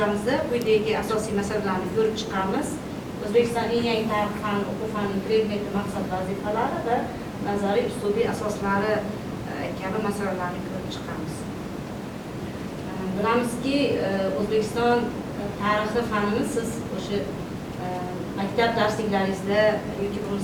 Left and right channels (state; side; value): identical; both; correlation 1.00